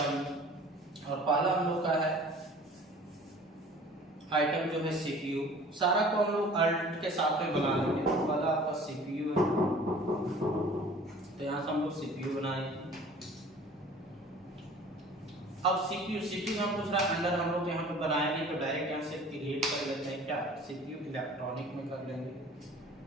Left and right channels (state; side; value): normal; both; correlation 0.47